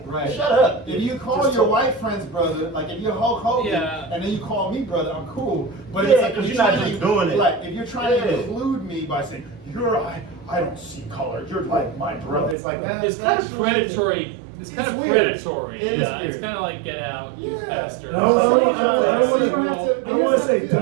Right. shut up. If you call Just your talk. white friends brother, like if you're Hulk Hogan, Yeah. and then you call me brother, I'm cool. But Yeah, it's like 'cause if you're not trying just to- doing it. Like if you're trying to Yeah. include me by saying I don't see color. You're like my brother. It's like that. It's kind of predatory. It's kind of weird. predatory. It is Yeah, it's weird. kind of like get out, you Yeah. bastard. No, I don't want to say Yeah.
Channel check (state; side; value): drops out; left; at 12.6 s